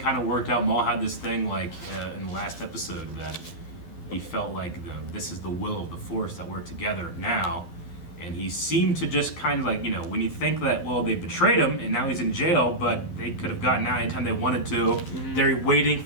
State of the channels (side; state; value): right; late; 11 ms